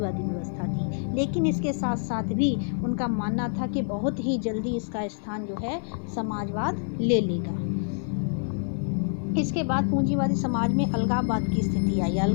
व्यवस्था थी। लेकिन इसके साथ साथ भी उनका मानना था कि बहुत ही जल्दी इसका स्थान जो है समाजवाद ले लेगा। इसके बाद पूंजीवादी समाज में अलगाववाद की स्थिति आई।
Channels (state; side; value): silent; right; 60 dB below the other